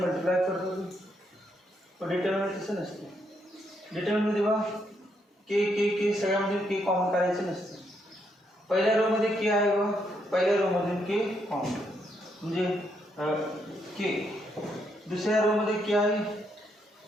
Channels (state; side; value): normal; both; correlation 0.76